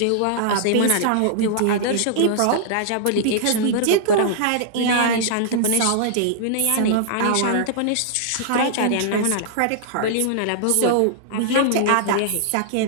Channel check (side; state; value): both; different; correlation -0.01